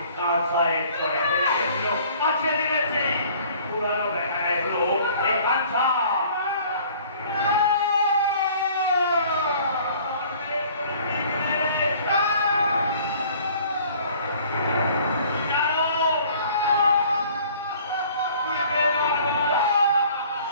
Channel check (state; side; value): inverted; both; correlation -0.53